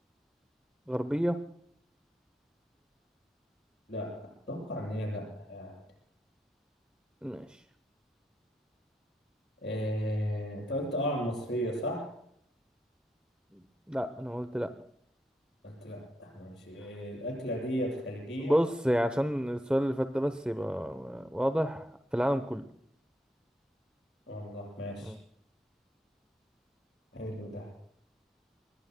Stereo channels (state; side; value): normal; both; correlation 0.82